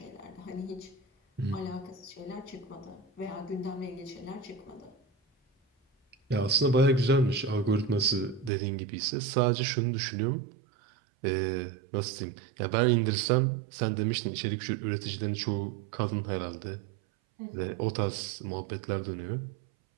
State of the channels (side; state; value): left; drops out; at 8.5 s